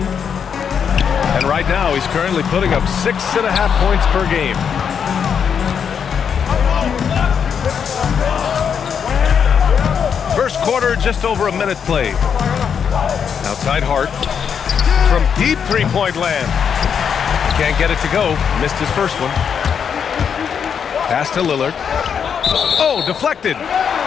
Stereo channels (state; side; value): quieter; right; 7.3 dB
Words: And right now, he's currently putting up 6.5 points per game. First quarter, just over a minute played. Outside Hart. From deep three-point land. Can't get it to go. Missed his first one. Pass to Lillard. Oh, deflected.